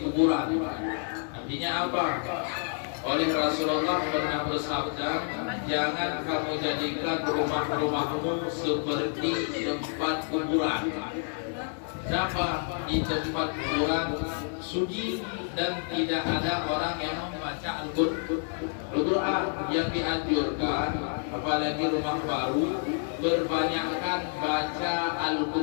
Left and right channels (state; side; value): silent; right; 56 dB below the other